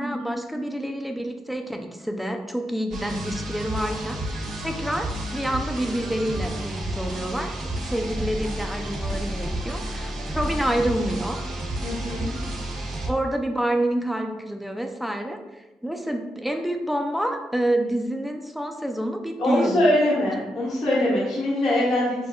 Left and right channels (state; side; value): normal; both; correlation 0.86